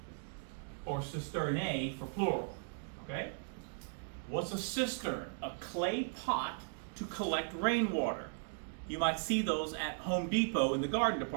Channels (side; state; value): left; silent; digital silence